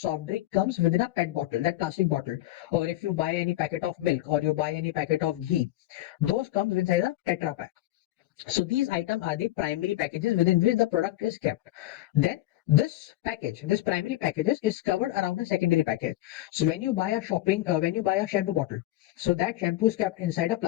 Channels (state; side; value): quieter; right; 16.1 dB